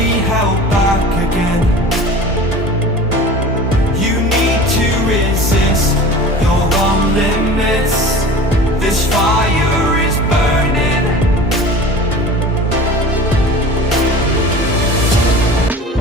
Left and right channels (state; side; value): normal; both; correlation 0.38